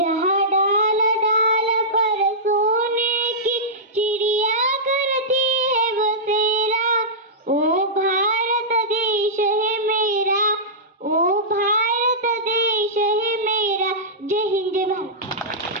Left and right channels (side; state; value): both; normal; correlation -0.15